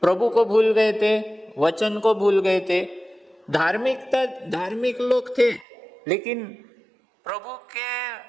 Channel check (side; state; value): left; drops out; at 5.7 s